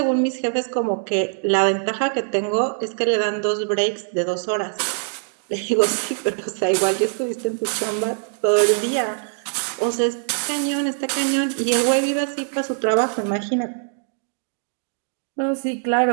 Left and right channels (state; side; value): silent; left; 64 dB below the other